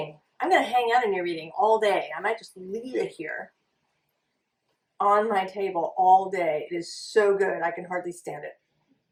I'm going to hang out in your reading all day. I might just leave it here on my table all day. It is so good. I can hardly stand it.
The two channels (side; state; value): both; identical; correlation 1.00